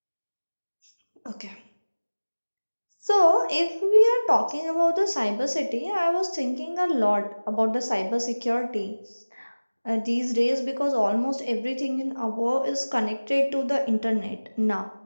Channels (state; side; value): inverted; both; correlation -1.00